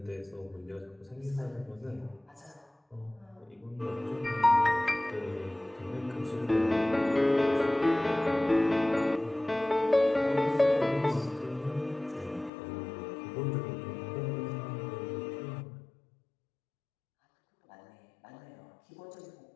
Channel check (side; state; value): right; drops out; at 12.5 s